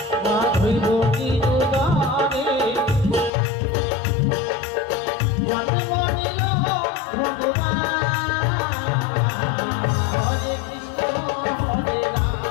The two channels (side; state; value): right; drops out; at 3.3 s